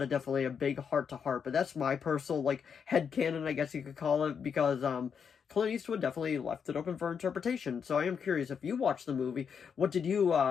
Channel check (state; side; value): quieter; right; 6.8 dB